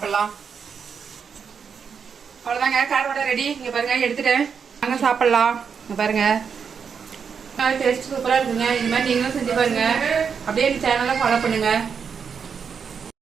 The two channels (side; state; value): left; quieter; 6.5 dB